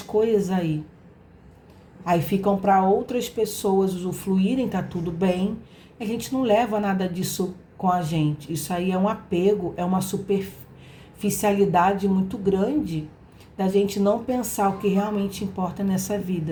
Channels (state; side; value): identical; both; correlation 1.00